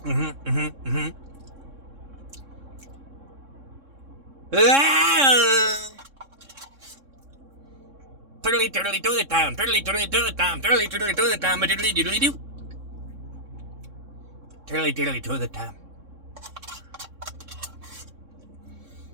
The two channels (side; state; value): left; late; 3.6 ms